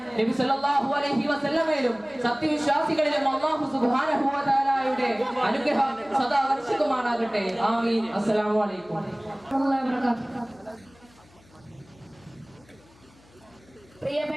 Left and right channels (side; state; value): left; noise; hum, 28 dB below the sound